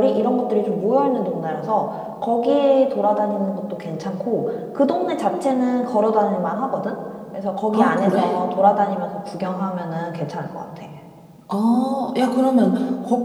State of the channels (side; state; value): both; identical; correlation 1.00